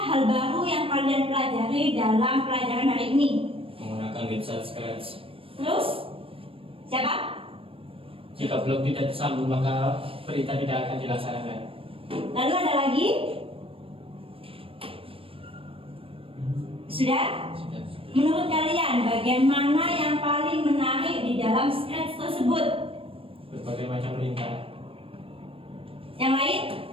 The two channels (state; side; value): late; left; 0.27 ms